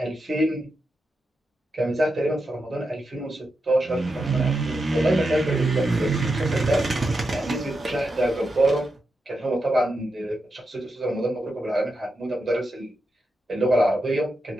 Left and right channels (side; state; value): both; normal; correlation 0.87